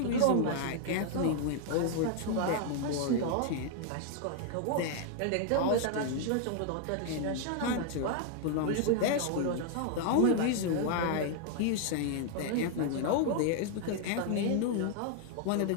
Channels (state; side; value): different; both; correlation 0.00